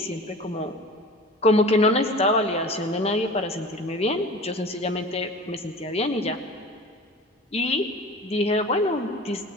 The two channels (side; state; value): both; normal; correlation 0.38